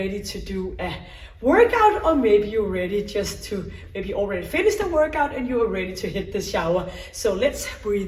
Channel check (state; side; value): identical; both; correlation 1.00